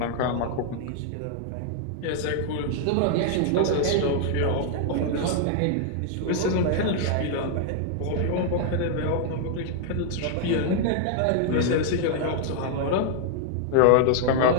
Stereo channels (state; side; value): different; both; correlation -0.01